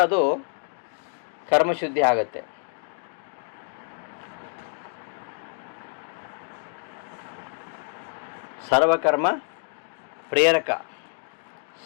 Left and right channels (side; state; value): right; silent; 60 dB below the other